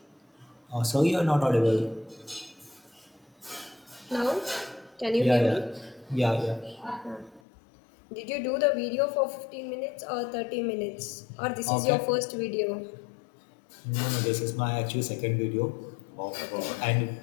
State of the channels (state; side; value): drops out; right; at 7.4 s